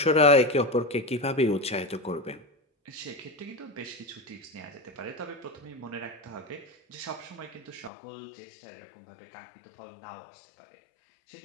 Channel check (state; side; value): drops out; right; at 7.9 s